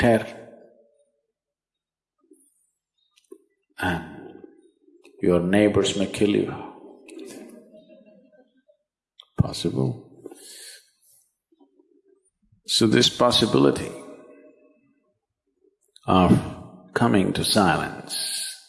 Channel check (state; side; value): identical; both; correlation 1.00